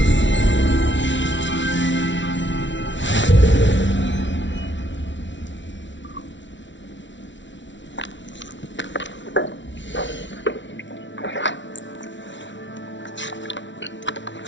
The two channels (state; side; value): late; right; 0.54 ms